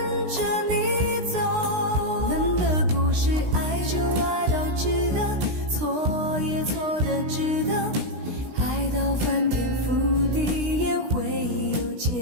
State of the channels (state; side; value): late; left; 16 ms